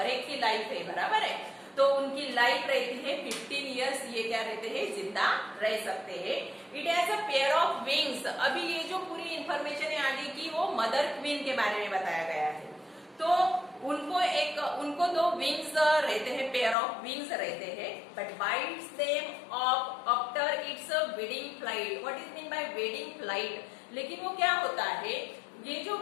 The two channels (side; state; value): right; drops out; at 16.8 s